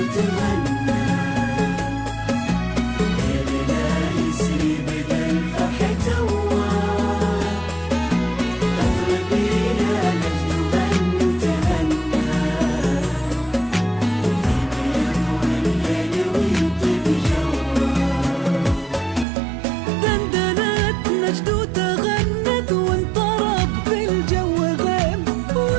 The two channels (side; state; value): left; drops out; at 19.2 s